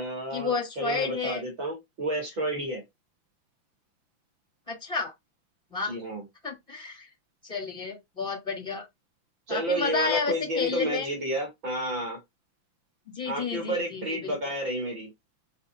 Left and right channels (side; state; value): left; late; 5.9 ms